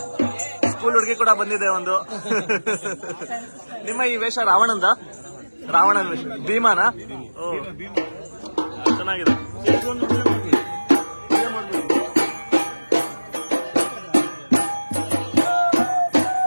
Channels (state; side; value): inverted; both; correlation -1.00